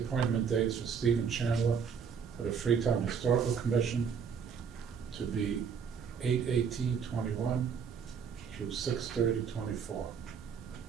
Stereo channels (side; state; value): left; quieter; 6.7 dB